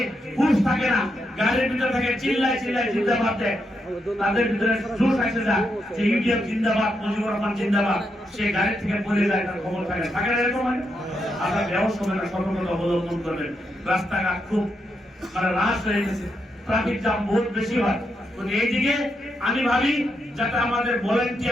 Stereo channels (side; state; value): both; normal; correlation 0.82